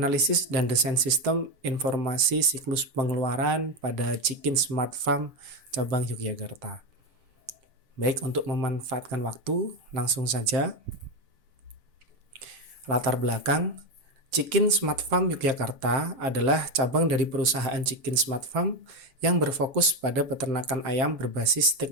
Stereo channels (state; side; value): late; left; 7.5 ms